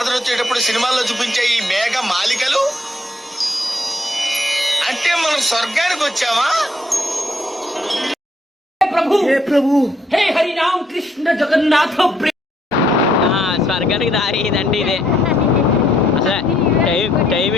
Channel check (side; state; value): both; normal; correlation 0.70